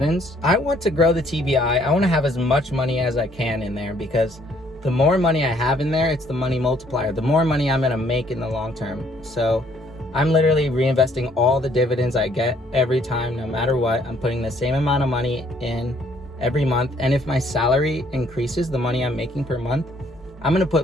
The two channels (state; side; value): normal; both; correlation 0.64